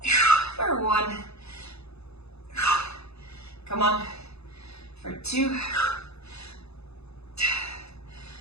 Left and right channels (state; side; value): late; right; 0.79 ms